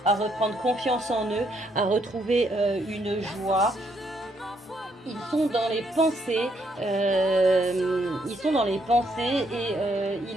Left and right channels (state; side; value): normal; both; correlation 0.73